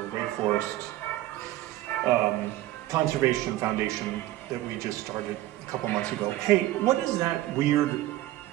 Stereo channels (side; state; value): left; quieter; 15.7 dB